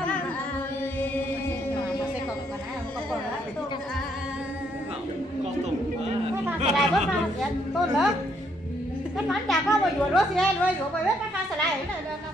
lại bớt ra tôn nữa cái món chả có mà dùa đó xe rồi dùa bài biết cái khăn lại này là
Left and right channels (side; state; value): both; normal; correlation 0.72